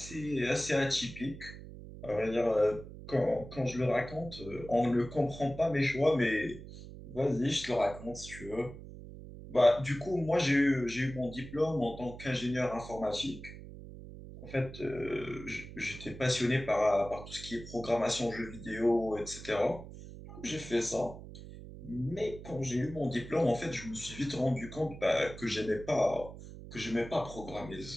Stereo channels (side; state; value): right; noise; hum, 13 dB below the sound